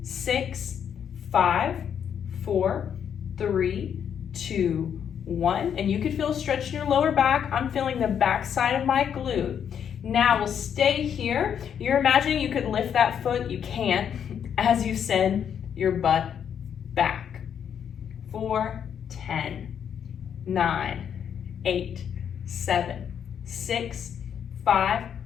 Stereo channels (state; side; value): quieter; right; 8.3 dB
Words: 6, 5, 4, 3, 2, 1, and you could feel a stretch in your lower back. I'm feeling the back side of my glute. Now we'll stay here. You're imagining you could lift that foot. You can't as you send your butt back. 4, 10, 9, 8, 7, 6, 5,